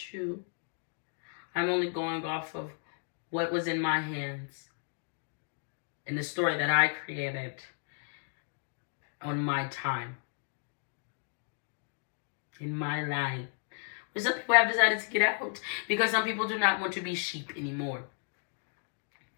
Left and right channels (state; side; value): silent; right; 55 dB below the other